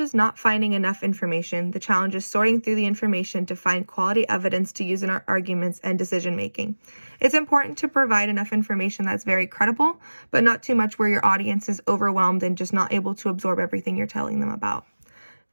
not finding enough information. The challenge is sorting through the information to find quality evidence to use in our arguments and decision making. It's important to provide enough information that's very credible, but not too much where your audience is overwhelmed and just not able to absorb everything you're telling them about.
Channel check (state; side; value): inverted; both; correlation -1.00